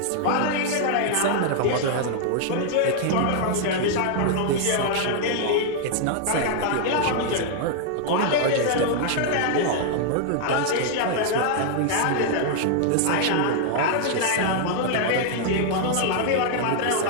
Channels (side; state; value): both; different; correlation 0.00